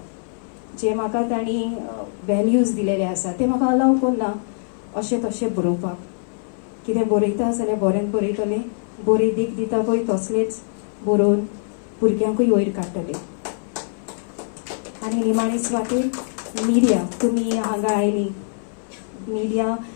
जे म्हाका तांणी वॅल्यूज दिलेले आसा ते म्हाका अलाव करना अशें तशें बरोवपाक. कितें बरयता जाल्यार बरें बरयतलें, बरें देख दिता पळय तसलेंच बरोवन भुरग्यांकूय वयर काडटलें. आनी निमाणी सुवातेर मिडिया, तुमी हांगा आयली, मिडिया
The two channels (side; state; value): right; silent; 59 dB below the other